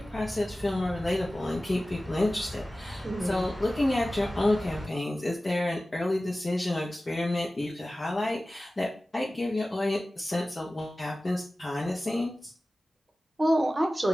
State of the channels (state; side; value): normal; both; correlation 0.96